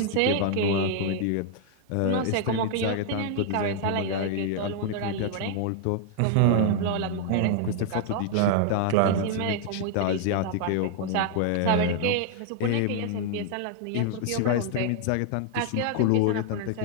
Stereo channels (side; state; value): both; different; correlation 0.00